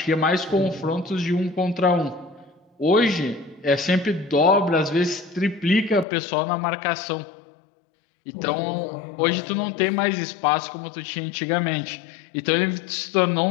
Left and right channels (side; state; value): right; drops out; at 6.1 s